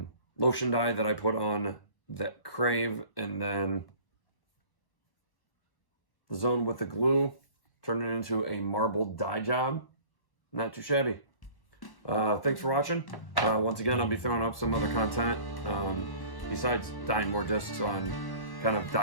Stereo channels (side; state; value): right; late; 1.1 ms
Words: lotion dye that I put on that Crave, and then the zone with the glue, turned it into a marbled dye job. Not too shabby. Thanks for watching. Once again, I'll be throwing up some other content besides dyeing more discs, on kind of